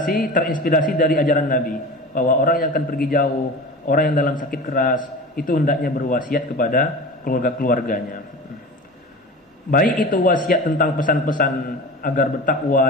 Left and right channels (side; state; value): both; normal; correlation 0.34